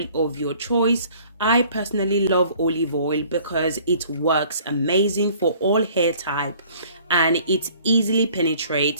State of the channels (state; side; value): inverted; both; correlation -0.55